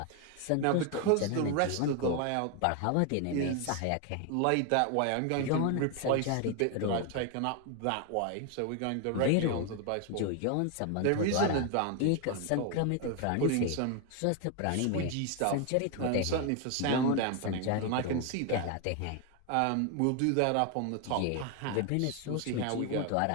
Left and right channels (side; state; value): both; different; correlation 0.01